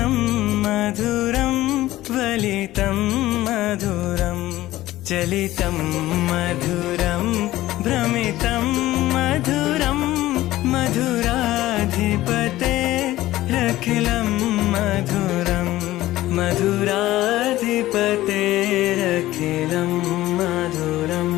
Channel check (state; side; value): quieter; right; 16.0 dB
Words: मधुरं वलितं मधुरं चलितं मधुरं भ्रमितं मधुरं मधुराधिपतेरखिलं मधुरं मधुराधिपतेरखिलं मधुरम्